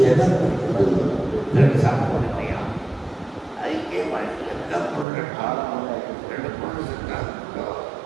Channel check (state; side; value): drops out; left; at 5.1 s